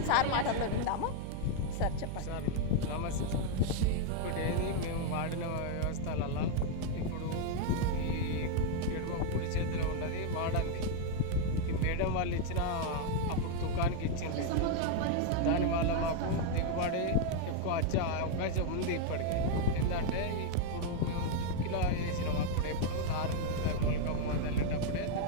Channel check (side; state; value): both; different; correlation 0.00